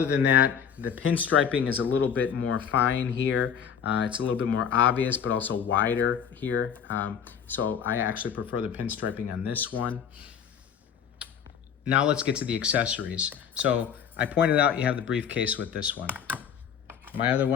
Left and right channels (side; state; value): right; quieter; 7.8 dB